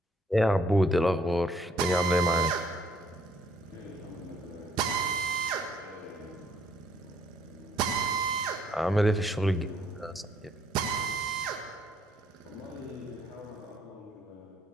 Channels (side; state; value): both; normal; correlation 0.66